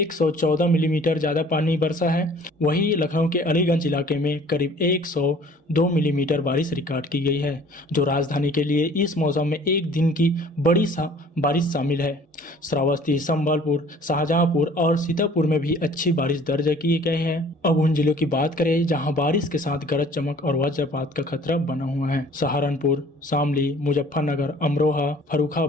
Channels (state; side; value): normal; both; correlation 0.52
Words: मिलीमीटर ज़्यादा पानी बरसा है। वहीं लखनऊ के अलीगंज इलाके में करीब 102 मिलीमीटर बारिश रिकॉर्ड की गई है, जो राजधानी के लिए इस मौसम में एक दिन की बड़ी बारिश शामिल है। श्रावस्ती, संबलपुर, शाहजहांपुर और सीतापुर में भी अच्छी बारिश दर्ज की गई है। अब उन जिलों की बात करें जहां बारिश के साथ गरज चमक और वज्रपात का खतरा बना हुआ है। सहारनपुर, शामली, मुजफ्फरनगर, अमरोहा,